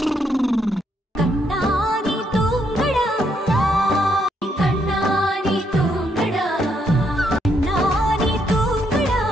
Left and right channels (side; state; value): both; normal; correlation 0.75